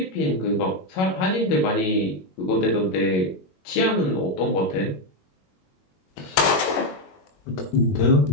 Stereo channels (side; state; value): right; late; 21 ms